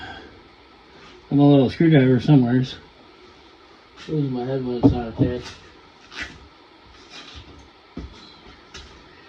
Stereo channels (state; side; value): identical; both; correlation 1.00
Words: a little screwdriver somewhere. Losing my head when it's not attached.